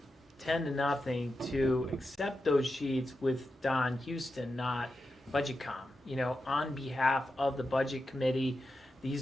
10-0 to accept those sheets with Don Houston, not BudgetCom. On behalf of the budget committee,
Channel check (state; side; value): normal; both; correlation 0.89